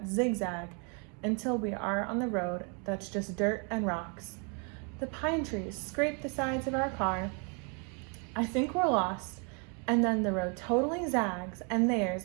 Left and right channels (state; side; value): quieter; left; 36.6 dB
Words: zigzag until we are on the road that's just dirt and rocks. The pine trees scrape the sides of our car. I think we're lost, and then the road totally zags, and